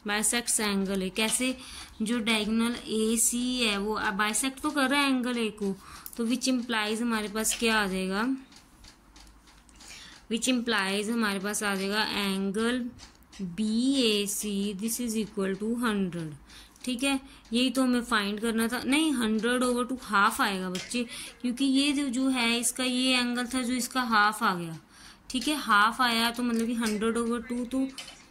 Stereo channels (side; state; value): both; identical; correlation 1.00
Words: बाइसेक्ट एंगल A, कैसे, जो डायगोनल AC है वो बाइसेक्ट तो कर रहा है एंगल A को, तो विच इम्प्लाइज हमारे पास क्या आ जाएगा, विच इम्प्लाइज हमारे पास आ जाएगा angle BAC this is equal to 100, ठीक है, यही तो हमें फाइंड करना था। नहीं 100/2 हाफ आएगा बच्चे, क्योंकि ये जो है इसका ये एंगल था जो इसका हाफ आ गया, ठीक है, हाफ आया तो मतलब कि 100/2, तो